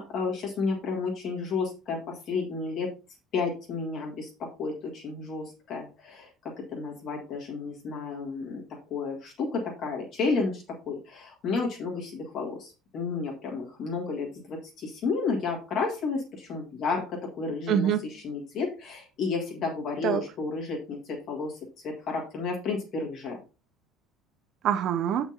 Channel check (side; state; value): both; normal; correlation 0.49